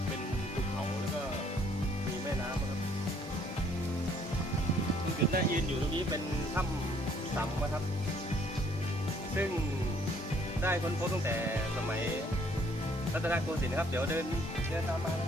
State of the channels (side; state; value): both; normal; correlation 0.63